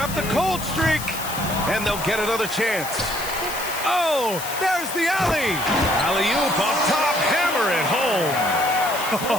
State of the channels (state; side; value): noise; left; hiss, 9 dB below the sound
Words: the cold streak. And they'll get another chance. Oh, there's the alley. Alley-oop up top. Hammer it home.